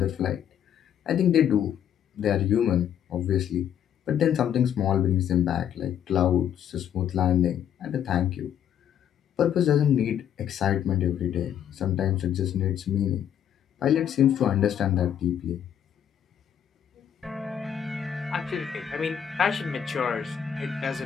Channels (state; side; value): quieter; right; 9.4 dB